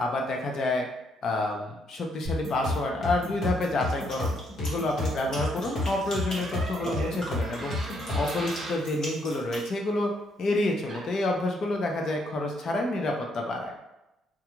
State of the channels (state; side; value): normal; both; correlation 0.73